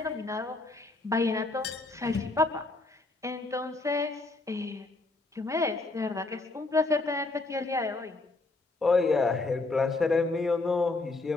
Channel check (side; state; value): right; quieter; 3.3 dB